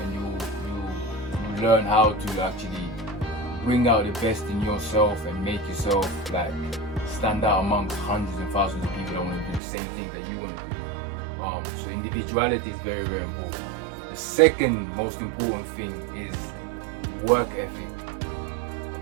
and you learn how to actually bring out the best in yourself and make yourself like stand out amongst hundreds and thousands of people that want to do the same thing that you want to do. So individuality is very, very important. The second most important thing is work ethic.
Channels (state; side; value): drops out; left; at 9.6 s